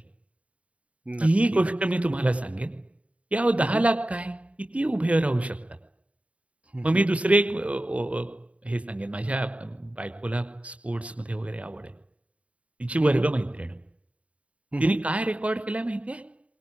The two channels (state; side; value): late; left; 0.065 ms